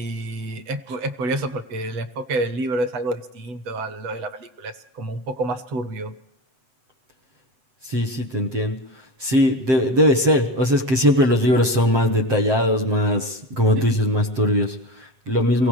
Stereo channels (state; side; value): late; left; 7.7 ms